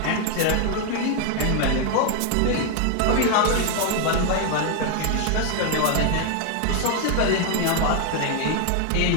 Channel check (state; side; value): different; both; correlation 0.00